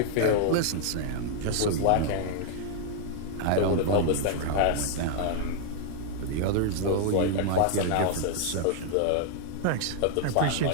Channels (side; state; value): both; different; correlation 0.00